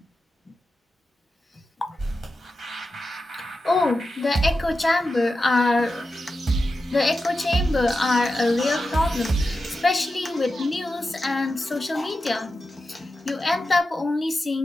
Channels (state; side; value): normal; both; correlation 0.91